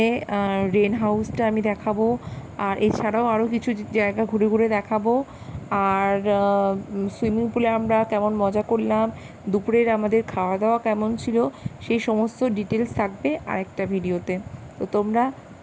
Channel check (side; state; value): both; identical; correlation 1.00